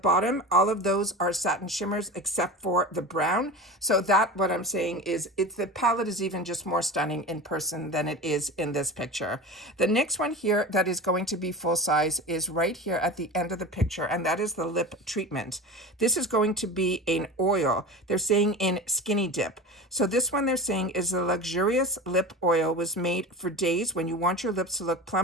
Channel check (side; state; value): both; normal; correlation 0.30